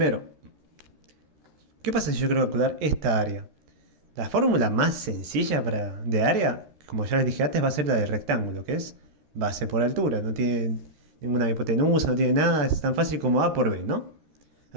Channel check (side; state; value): left; late; 13 ms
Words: ¿qué pasa si yo quiero calcular esta área? La fórmula más sencilla de área, como ya les dije antes, va a ser la del rectángulo, que es base por altura. No tiene ninguna hipotenusa, no tiene nada, es tan fácil como A por B, ¿no?